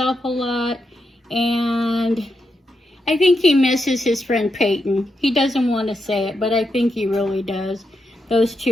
a lot. And I think he misses his friend Peyton. He doesn't want to say it, but I think he really does. Those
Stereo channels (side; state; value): both; normal; correlation 0.84